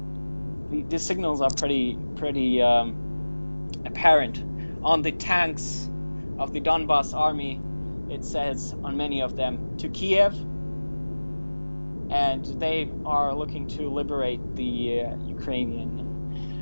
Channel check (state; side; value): inverted; both; correlation -1.00